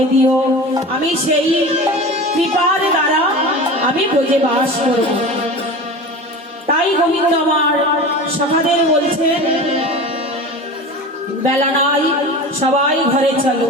দিও, আমি সেই কৃপার দ্বারা আমি ব্রজে বাস করব। তাই গোবিন্দ আমার সখাদের বলছেন, বেলা নাই, সবাই ঘরে চলো।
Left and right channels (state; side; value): normal; both; correlation 0.32